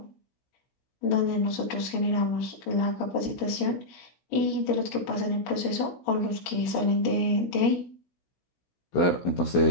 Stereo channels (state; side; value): late; right; 16 ms